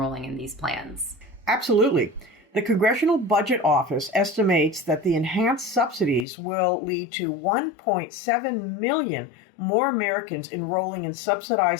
in these plans. Absolutely. The Congressional Budget Office estimates that the enhanced subsidies will lead to 1.7 million more Americans enrolling in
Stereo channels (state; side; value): drops out; right; at 6.2 s